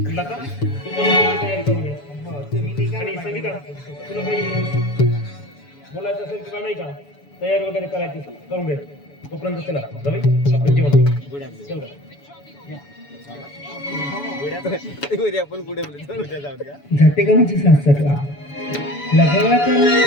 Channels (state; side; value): late; right; 7.0 ms